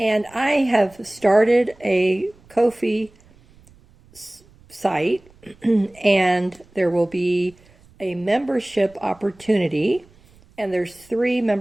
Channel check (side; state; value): right; noise; rumble, 28 dB below the sound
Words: I have started a Ko-fi site, and there will be a membership opportunity, and there's 3